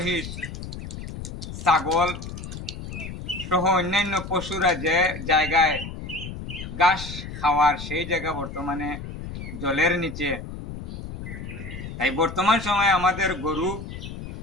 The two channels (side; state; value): left; noise; rumble, 9 dB below the sound